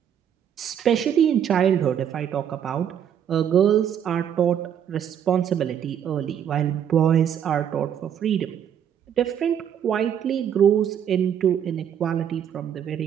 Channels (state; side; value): quieter; left; 9.0 dB